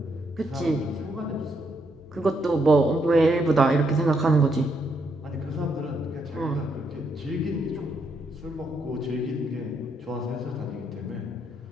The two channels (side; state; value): both; normal; correlation 0.76